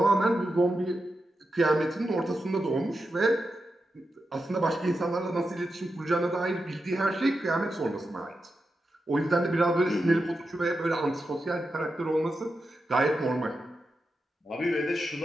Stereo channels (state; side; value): normal; both; correlation 0.89